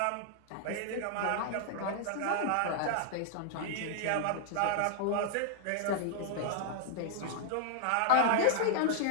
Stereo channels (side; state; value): both; different; correlation -0.01